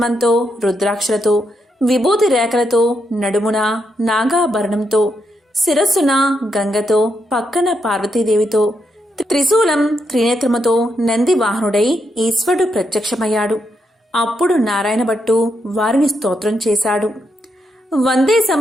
రుద్రాక్షలతో, విభూతి రేఖలతో, నడుమున నాగాభరణంతో, శిరస్సున గంగతో, పక్కన పార్వతీదేవితో, త్రిశూలం త్రినేత్రముతో నంది వాహనుడై ఈశ్వరుడు ప్రత్యక్షమయ్యాడు. అప్పుడు నారాయణ భట్టు వారిని స్తోత్రం చేశాడు. వందే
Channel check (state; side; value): normal; both; correlation 0.81